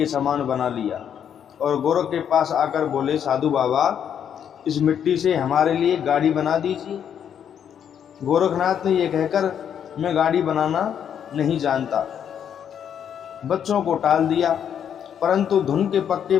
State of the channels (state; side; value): quieter; right; 8.7 dB